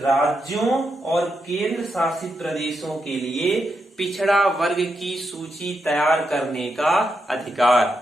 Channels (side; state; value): both; normal; correlation 0.84